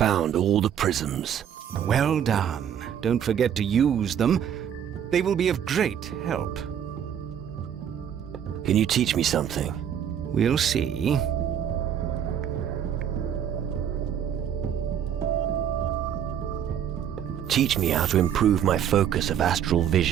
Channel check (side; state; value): left; quieter; 9.1 dB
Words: all the prisms. Well done. Don't forget to use them. They will be of great help. Can you teach me something? We'll see. Teach me how to improve my focus of astral